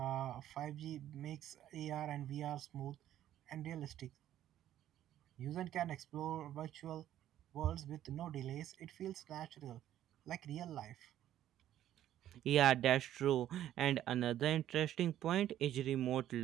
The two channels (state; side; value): quieter; left; 12.0 dB